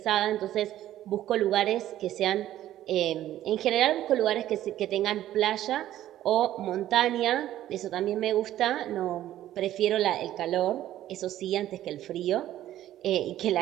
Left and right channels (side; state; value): left; quieter; 13.0 dB